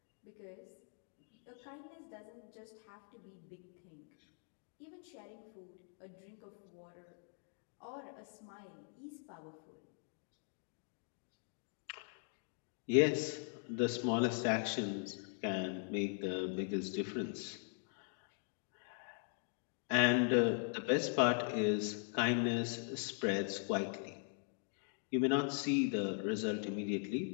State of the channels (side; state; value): right; silent; 51 dB below the other